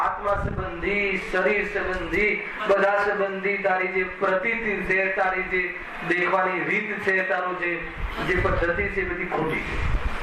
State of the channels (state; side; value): identical; both; correlation 1.00